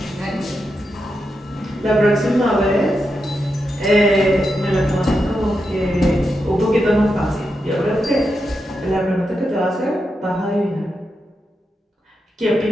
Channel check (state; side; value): normal; both; correlation 0.86